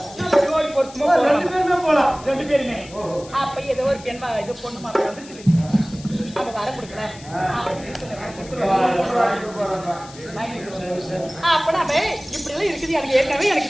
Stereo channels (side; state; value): left; noise; hiss, 19 dB below the sound